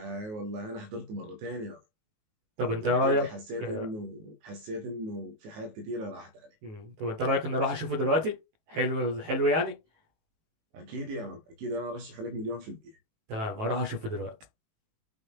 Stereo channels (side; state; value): left; late; 19 ms